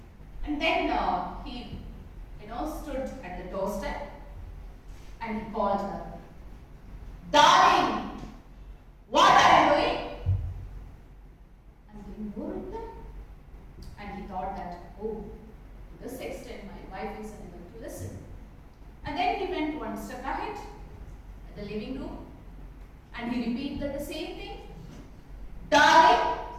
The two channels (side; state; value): both; identical; correlation 1.00